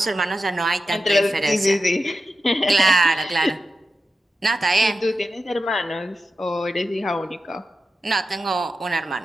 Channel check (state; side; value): normal; both; correlation 0.91